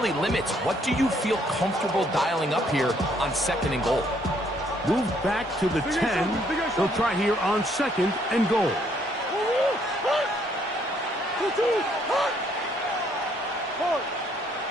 limits what do you feel comfortable dialing up here on 2nd and goal. Move back to the 10. They'll try here on 2nd and goal.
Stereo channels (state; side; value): normal; both; correlation 0.67